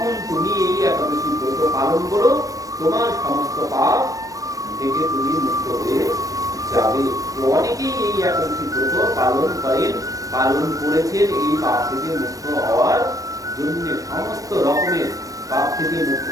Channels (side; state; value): left; late; 0.17 ms